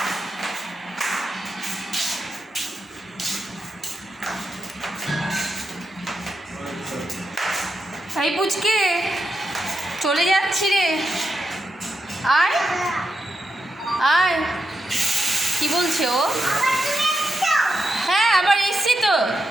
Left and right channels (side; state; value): both; normal; correlation 0.86